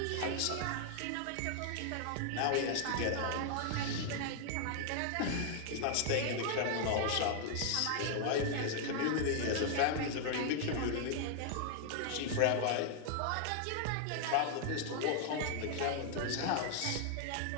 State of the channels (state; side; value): different; both; correlation 0.00